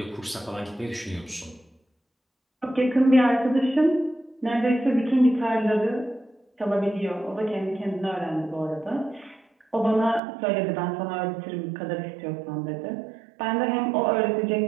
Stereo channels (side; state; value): left; drops out; at 10.2 s